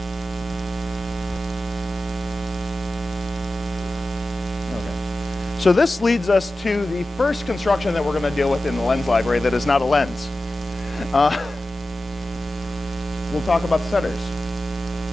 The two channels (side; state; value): both; normal; correlation 0.94